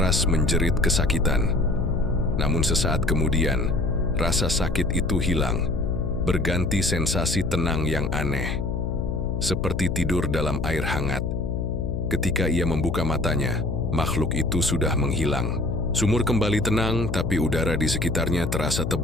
menjerit kesakitan. Namun sesaat kemudian, rasa sakit itu hilang, berganti sensasi tenang yang aneh. seperti tidur dalam air hangat. Ketika ia membuka matanya, makhluk itu sudah menghilang. Sumur kembali tenang, tapi udara di sekitarnya terasa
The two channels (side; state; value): left; noise; hum, 2 dB below the sound